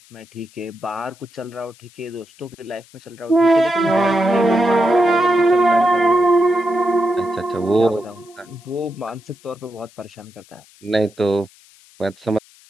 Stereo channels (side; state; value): left; noise; hiss, 27 dB below the sound